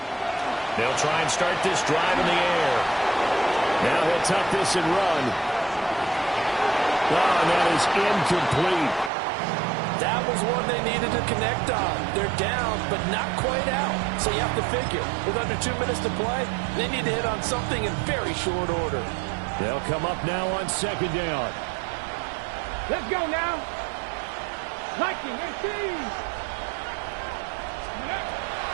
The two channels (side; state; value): left; drops out; at 9.1 s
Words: They'll try and start this drive in the air. Now he'll tuck this and run. Oh, and that is incomplete. That was one they needed to connect on. They're down, but not quite out. So you have to figure, with under 2 minutes to play, they need to hit on something in very short order. They'll come up now on 2nd down. Let's go now. Liking, 18.